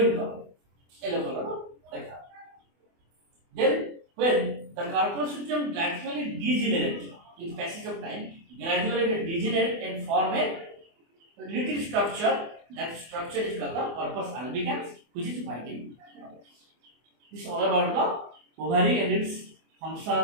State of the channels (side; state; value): left; late; 24 ms